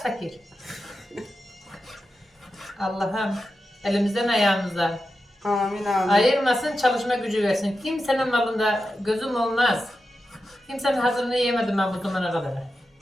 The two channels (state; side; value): normal; both; correlation 0.90